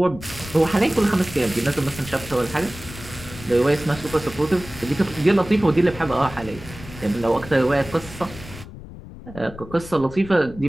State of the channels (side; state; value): left; noise; rumble, 15 dB below the sound